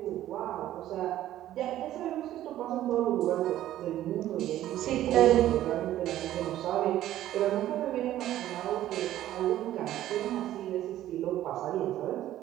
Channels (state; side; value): quieter; left; 13.2 dB